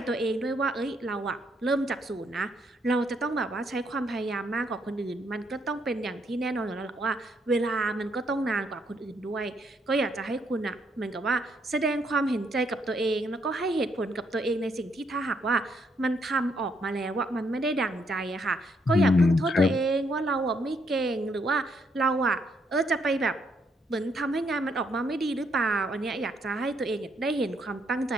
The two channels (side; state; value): both; normal; correlation 0.73